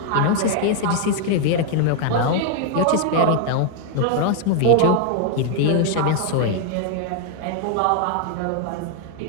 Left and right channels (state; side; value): different; both; correlation 0.00